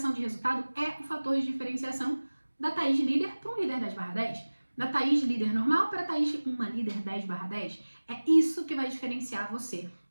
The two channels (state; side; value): inverted; both; correlation -1.00